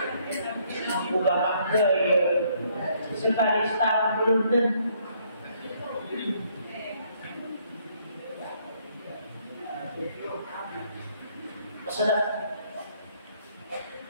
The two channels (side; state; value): both; inverted; correlation -0.68